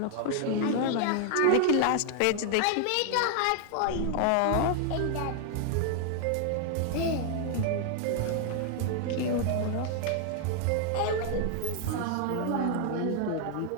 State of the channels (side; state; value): both; different; correlation 0.00